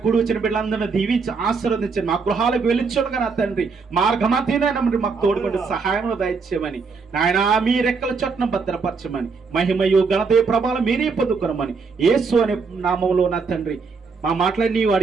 కూడి వచ్చిన బిడ్డలందరినీ దీవించి ఆశీర్వదించండి. మా గృహాలకు వెళ్ళించుడుగా నా తండ్రి మార్గమతీనైనా మాకు తోడుకుంటే సహాయం దయచేయమని నాయన. మీ రెక్కల చొట్టున భద్రపరచమని, మహిమయు ఘనత ప్రభావాలు మీరే పొందుకోమని యేసు అనే నామంలో నా తండ్రి మా మాటలన్నీ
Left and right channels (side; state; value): left; quieter; 4.9 dB